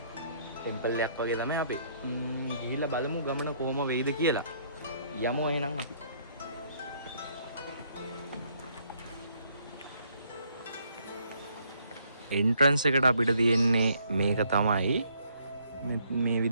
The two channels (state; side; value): inverted; both; correlation -0.67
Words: ටෙම්පල් එකක් වගේ තමයි අපි. ගිහිල්ලා බලමු ගමන කොහම වෙයිද කියලා. යමු එහෙනම් අපි. එන්ට්‍රන්ස් එකට අපිට තියෙන්නේ මේක තමයි. මේ